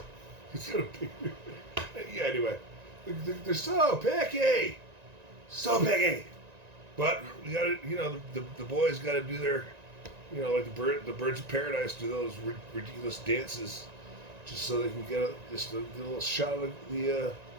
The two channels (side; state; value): left; late; 1.9 ms